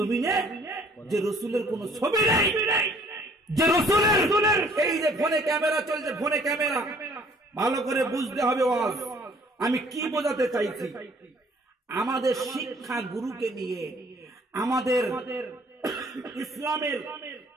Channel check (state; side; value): normal; both; correlation 0.57